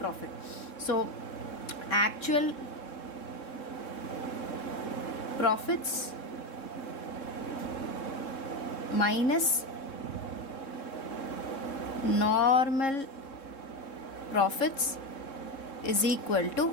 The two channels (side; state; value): right; late; 3.7 ms